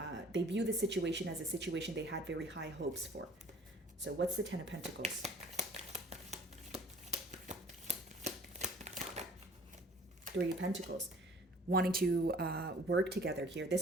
the situation as a situation they had very high hopes for. So what's the Ten of Pentacles? Three of Pentacles. Wanting to work together here.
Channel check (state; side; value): normal; both; correlation 0.52